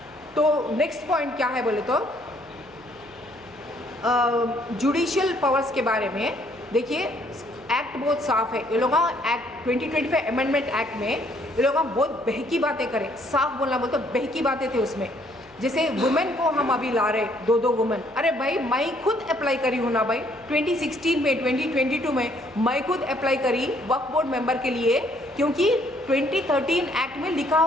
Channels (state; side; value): noise; left; hum, 29 dB below the sound